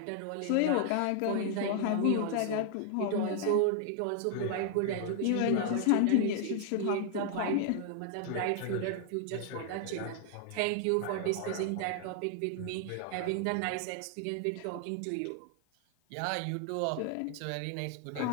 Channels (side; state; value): both; different; correlation 0.00